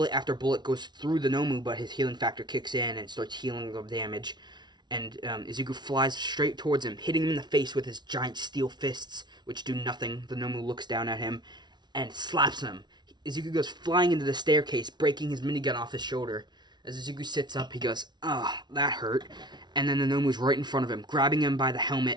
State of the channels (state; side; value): late; left; 0.20 ms